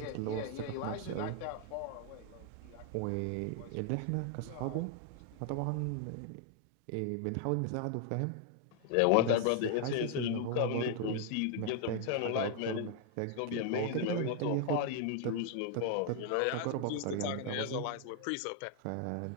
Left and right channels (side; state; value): both; different; correlation 0.00